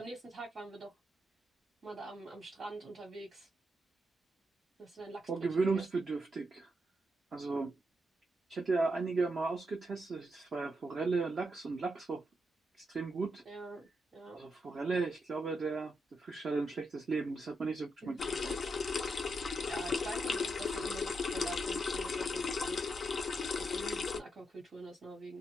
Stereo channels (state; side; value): normal; both; correlation 0.82